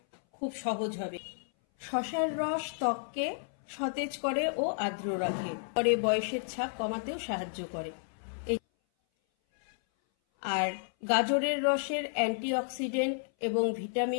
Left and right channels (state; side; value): silent; right; 56 dB below the other